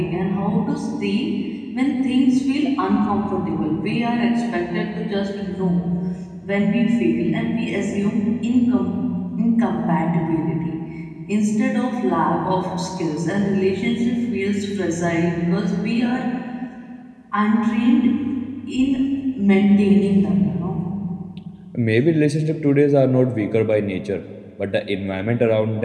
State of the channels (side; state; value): both; identical; correlation 1.00